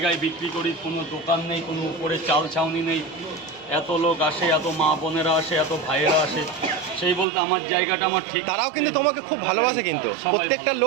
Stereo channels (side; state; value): left; drops out; at 7.2 s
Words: বিক্রি করি, কোনো দোকান নেই, কোনো উপরে চাল ছাউনি নেই, এত লোক আসে, এত মা বোনেরা আসে, এত ভাইয়েরা আসে, সেই বলতে আমার জায়গাটা আমার ঠিক। তারাও কিন্তু তোমাকে খুব ভালোবাসে, কিন্তু প্রত্যেকটা